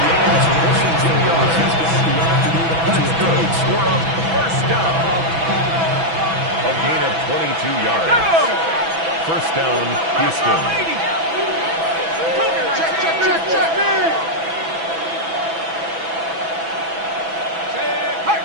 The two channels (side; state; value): left; late; 6.1 ms